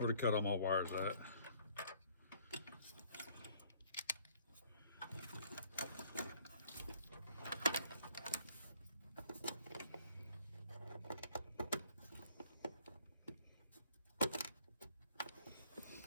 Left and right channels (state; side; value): inverted; both; correlation -0.59